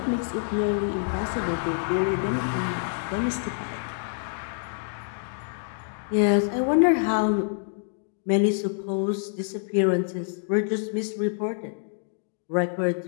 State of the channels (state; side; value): silent; right; digital silence